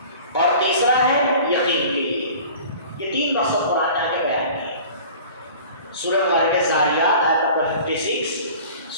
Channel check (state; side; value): inverted; both; correlation -0.43